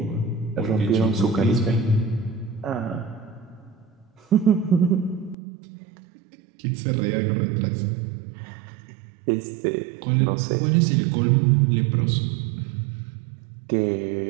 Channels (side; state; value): left; drops out; at 5.4 s